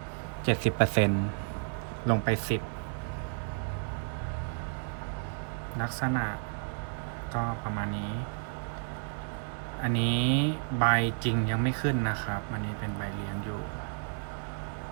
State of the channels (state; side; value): silent; left; 57 dB below the other